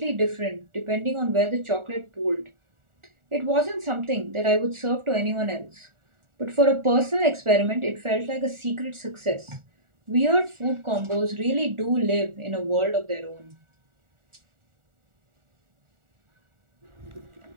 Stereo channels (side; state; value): left; late; 1.4 ms